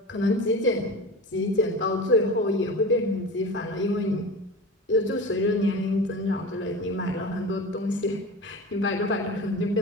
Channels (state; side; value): normal; both; correlation 0.31